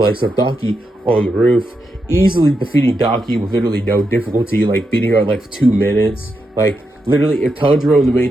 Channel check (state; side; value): normal; both; correlation 0.85